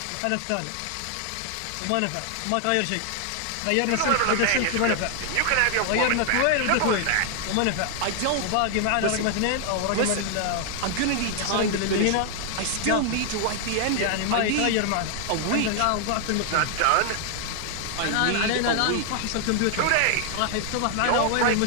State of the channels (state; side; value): different; both; correlation 0.00